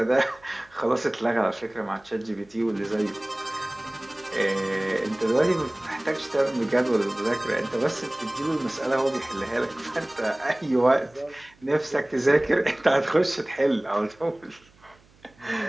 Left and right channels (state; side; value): noise; right; hum, 30 dB below the sound